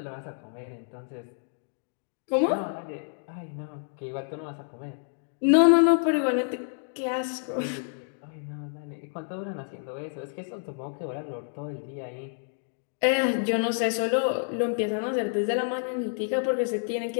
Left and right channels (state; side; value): silent; right; digital silence